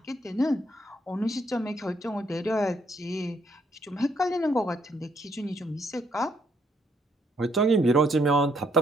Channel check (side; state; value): both; normal; correlation 0.71